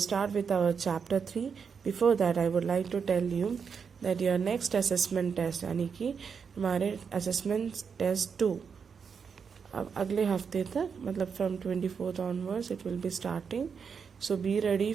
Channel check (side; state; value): left; quieter; 6.2 dB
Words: with our chapter 3. Before that, I would like to tell you that your next assessment test यानी कि हमारे assessment test 2 अब अगले हफ्ते तक मतलब from 24th onwards it will be starting. So be ready